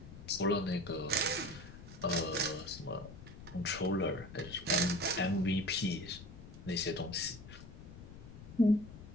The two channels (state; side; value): noise; left; rumble, 14 dB below the sound